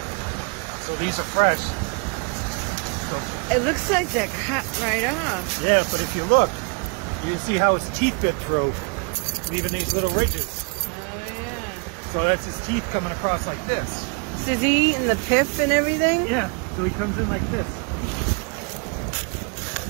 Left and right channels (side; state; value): left; quieter; 35.0 dB